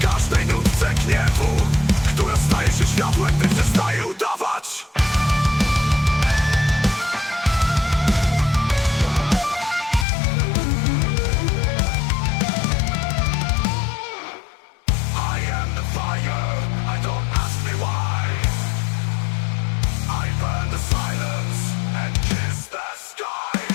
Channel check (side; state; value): right; drops out; at 10.1 s